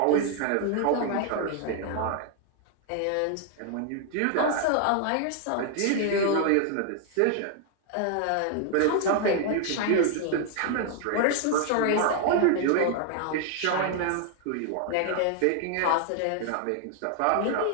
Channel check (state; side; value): different; both; correlation 0.00